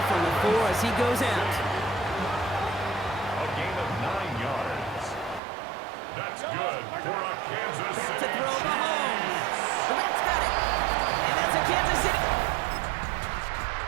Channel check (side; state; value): left; drops out; at 5.4 s